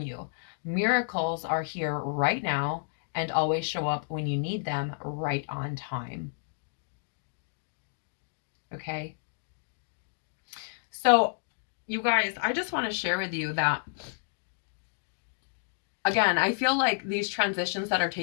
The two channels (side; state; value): right; silent; digital silence